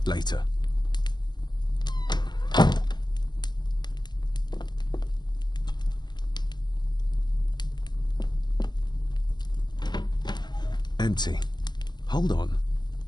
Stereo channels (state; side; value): late; right; 0.21 ms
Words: Later. Empty. Hold on.